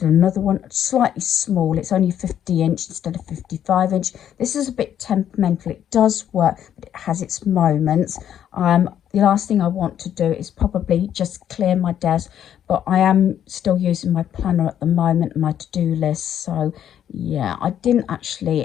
another one, slightly small. It's only 50-inch instead of 55-inch. This is a bit temperamental. It does work, but it has its moments. The last thing I want to do is probably just clear my desk, but I am still using my planner at the moment, my to-do list. So yeah, I didn't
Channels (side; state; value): right; quieter; 10.0 dB